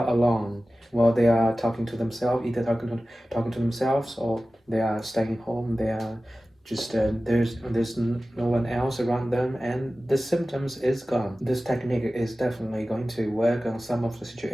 alone, while they are talking to themselves, either talking to themselves or they are staying home. They are just there's no one else around them, and the symptoms is gone. This technique is definitely going to work on some of the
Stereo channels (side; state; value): both; normal; correlation 0.96